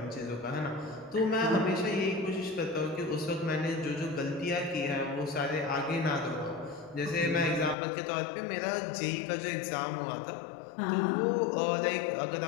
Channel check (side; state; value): right; drops out; at 7.8 s